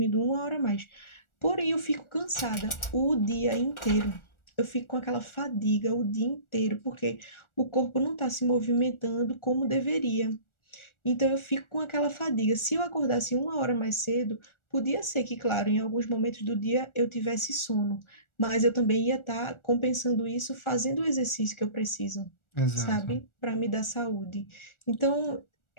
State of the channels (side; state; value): right; late; 1.4 ms